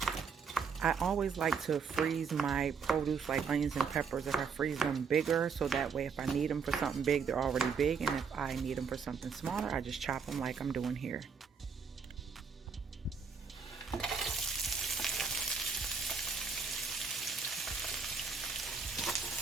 I always like to freeze my produce like onions and peppers if I freeze them bigger, so that way if I need them for something big, they're already big, and if I need them for something smaller, I just chop them like I'm doing here.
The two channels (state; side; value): quieter; left; 5.7 dB